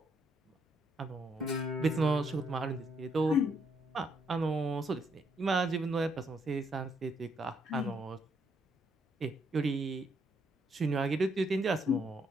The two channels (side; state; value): both; normal; correlation 0.73